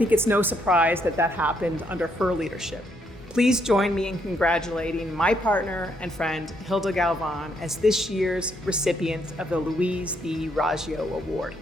it's no surprise that that happened under her leadership. Please join me in congratulating my partner and friend, Hilda Galvan, as this year's recipient of the Louise B. Raggio Award.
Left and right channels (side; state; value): both; normal; correlation 0.74